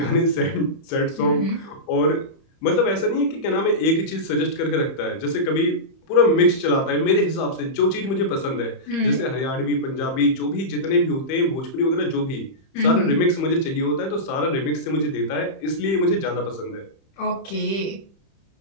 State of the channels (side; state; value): right; late; 30 ms